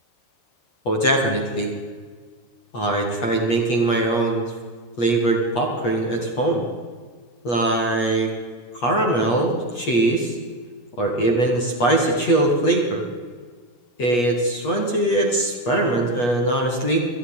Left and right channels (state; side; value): late; right; 8.3 ms